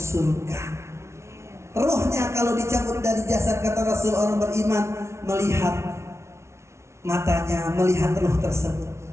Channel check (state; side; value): late; left; 0.13 ms